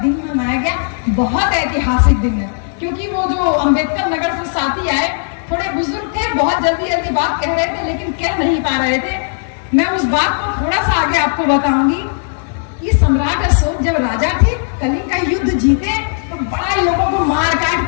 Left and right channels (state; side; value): silent; right; 60 dB below the other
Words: मनाया गया। बहुत ऐतिहासिक दिन है, क्योंकि वो जो अम्बेडकर नगर से साथी आए, थोड़े बुजुर्ग थे, बहुत जल्दी बात कह रहे थे लेकिन कह नहीं पा रहे थे। मैं उस बात को थोड़ा सा आगे आपको बताऊंगी कि सम्राट अशोक जब राजा थे, कलिंग का युद्ध जीते तो बड़ा लोगों को मार